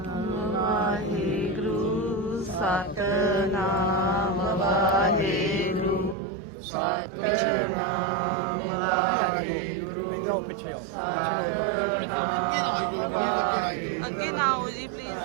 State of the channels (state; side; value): drops out; left; at 6.2 s